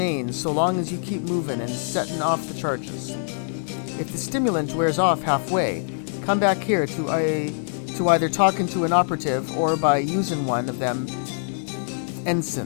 so long as you keep moving and setting off the charges. If the stimulant wears off halfway, come back here to either talking to an operative or by using one of them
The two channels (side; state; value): right; silent; 63 dB below the other